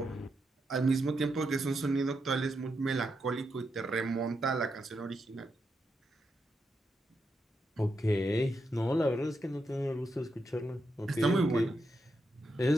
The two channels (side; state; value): both; normal; correlation 0.83